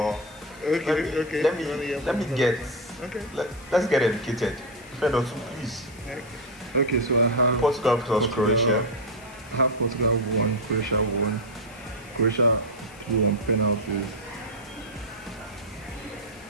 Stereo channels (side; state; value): left; noise; hiss, 23 dB below the sound